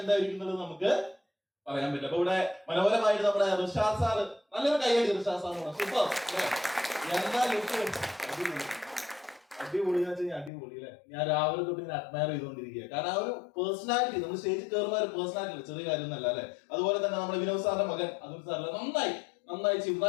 എന്തായിരിക്കുന്നത് നമുക്ക് പറയാൻ പറ്റില്ല. അപ്പൊ ഇവിടെ മനോഹരമായിട്ട് നമ്മുടെ ഋഷാദ് സാറ്, നല്ലൊരു കൈയടി ഋഷാദ് സാറിന്. സൂപ്പർ എന്താ ലുക്ക്, അടിപൊളി എന്ന് വെച്ചാൽ അടിപൊളി അല്ലെ. ഞാൻ രാവിലെ തൊട്ട് ഇങ്ങനെ അഡ്മയർ ചെയ്തുകൊണ്ടിരിക്കുക. കാരണം ആ ഒരു പേഴ്സണാലിറ്റി, നമ്മൾ സ്റ്റേജിൽ കയറുന്ന ഒരു പേഴ്സണാലിറ്റി ചെറിയ കാര്യമൊന്നല്ല അല്ലെ. അതുപോലെ തന്നെ നമ്മുടെ വിനോദ് സാറിന്റെ മകൻ അതുൽ സാറിന്റെ നന്നായി ചെയ്യും.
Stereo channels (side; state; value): right; drops out; at 10.5 s